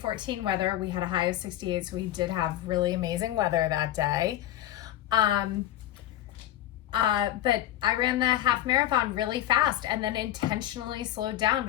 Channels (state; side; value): quieter; right; 13.0 dB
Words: weather, we had a high of 68, so we did have really amazing weather that day. But I ran the half marathon really fast and then intentionally slowed down